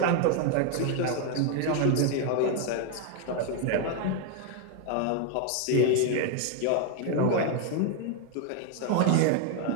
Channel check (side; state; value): both; different; correlation 0.01